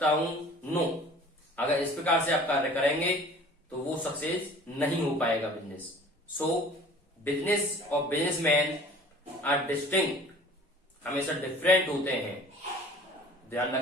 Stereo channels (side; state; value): both; normal; correlation 0.47